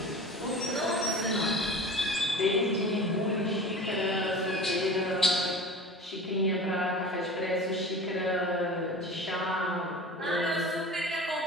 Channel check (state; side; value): normal; both; correlation 0.36